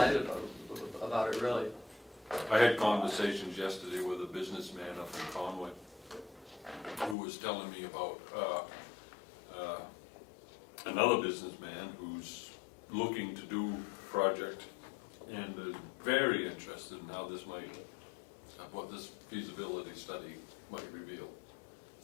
about it, really. I had conversations yesterday with a businessman up in Conway who was telling me about another businessman who's looking to do a project and is very interested in how this might, what this feasibility study might reveal.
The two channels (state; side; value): drops out; right; at 7.2 s